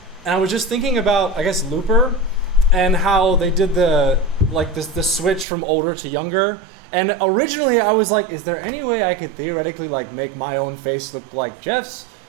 and I was just thinking about, I guess, Looper, and how they did the switch from older to younger. And originally I was like, is there any way I could theoretically make my own face look like Jeff's?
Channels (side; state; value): left; drops out; at 5.5 s